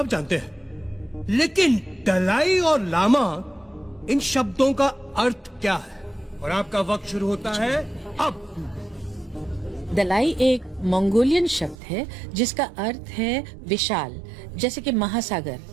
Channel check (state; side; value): drops out; left; at 11.8 s